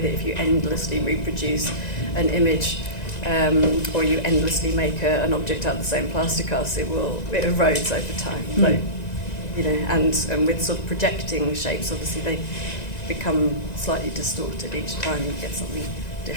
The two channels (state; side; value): late; right; 1.9 ms